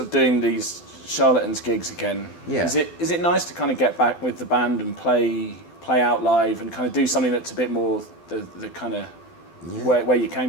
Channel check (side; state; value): right; late; 12 ms